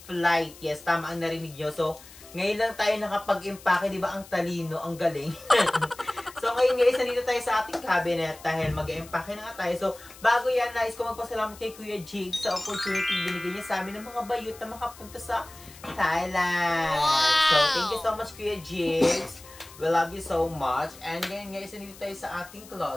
flight. Yes, tama ang narinig nyo. So, ngayon lang tayo nakapag-empake, di ba? Ang talino, ang galing. So, ngayon guys, nandito tayo sa ating cabinet dahil mag-empake na nga tayo. So, bago yan, nais ko magpasalamat kay Kuya Jig sa opportunity binigay niya sa amin ng mga bayot na makapunta sa Thailand. Wow! So, thank you so much, Kuya Jig. We love you so much. And ngayon guys, nandito tayo sa ating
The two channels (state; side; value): noise; left; hiss, 20 dB below the sound